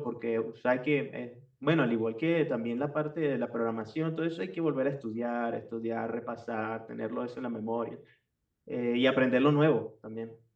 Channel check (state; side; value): identical; both; correlation 1.00